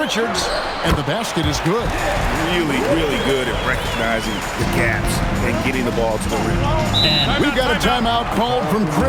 and the basket is good. Really, really good at recognizing the gaps and getting the ball to the rim. And we've got a timeout called from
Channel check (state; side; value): identical; both; correlation 1.00